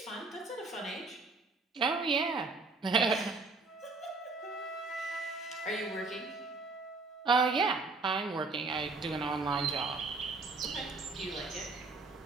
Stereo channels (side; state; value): left; quieter; 3.8 dB